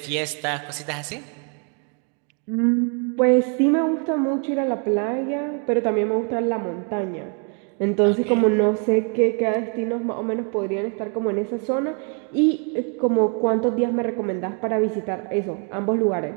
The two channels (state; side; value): quieter; left; 39.9 dB